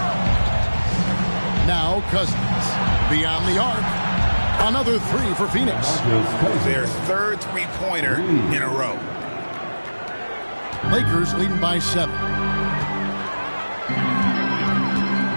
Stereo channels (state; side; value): inverted; both; correlation -1.00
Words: Now Cousins beyond the arc. Another 3 for Phoenix. Their 3rd three-pointer in a row. Lakers leading by 7.